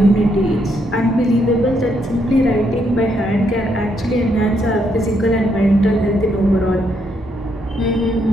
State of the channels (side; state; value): both; normal; correlation 0.75